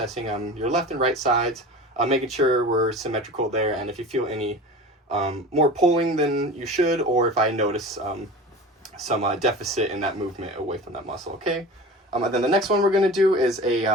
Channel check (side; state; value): both; normal; correlation 0.35